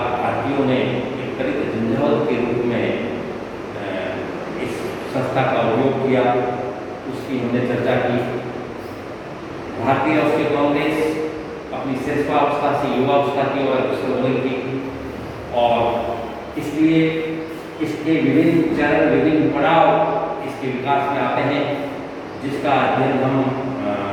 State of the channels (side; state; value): both; identical; correlation 1.00